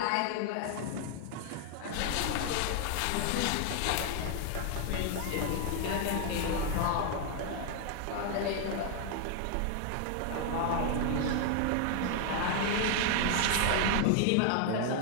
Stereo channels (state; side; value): different; both; correlation 0.00